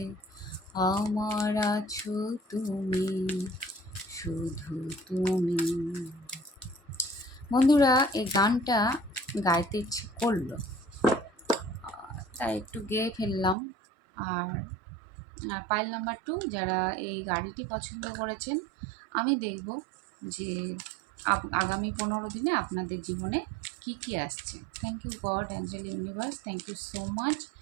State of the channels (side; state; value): left; drops out; at 13.6 s